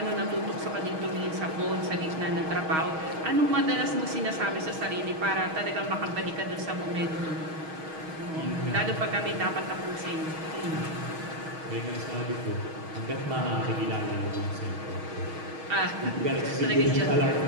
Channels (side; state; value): left; late; 6.3 ms